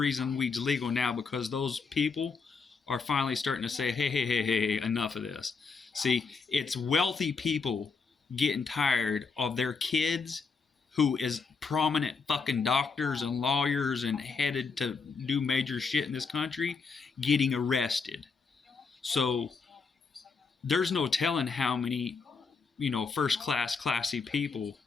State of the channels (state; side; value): quieter; right; 4.9 dB